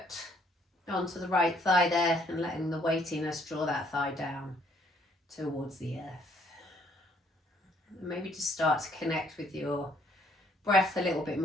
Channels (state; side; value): normal; both; correlation 0.66